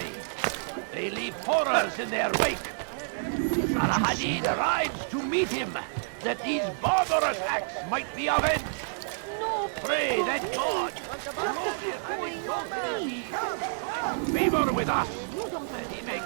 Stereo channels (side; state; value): left; silent; digital silence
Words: They leave horrors in their wake. Al-Hadid rides to meet him, that these barbarous acts might be avenged. Pray that God, glorious and exalted is He, finds favor with us, that He may